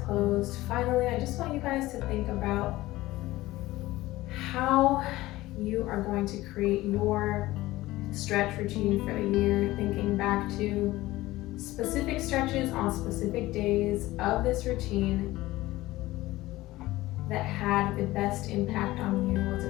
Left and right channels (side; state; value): right; quieter; 17.8 dB